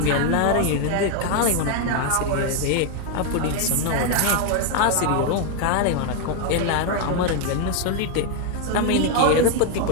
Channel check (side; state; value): both; different; correlation 0.01